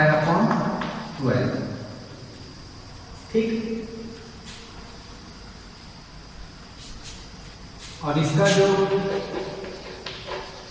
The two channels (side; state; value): both; identical; correlation 1.00